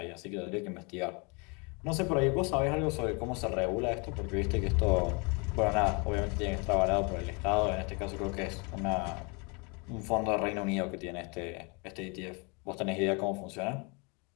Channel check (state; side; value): quieter; right; 31.4 dB